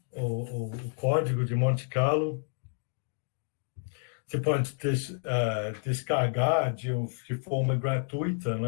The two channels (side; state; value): right; silent; digital silence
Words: o código de Monte Carlo, você pode descarregar de forma